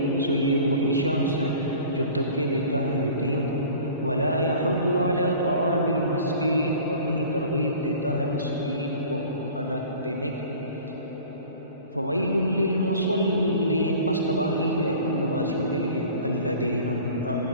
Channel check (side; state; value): both; inverted; correlation -0.44